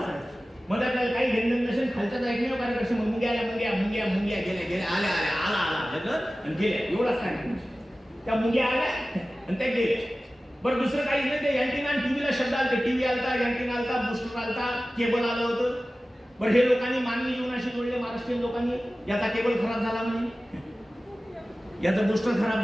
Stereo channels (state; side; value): normal; both; correlation 0.96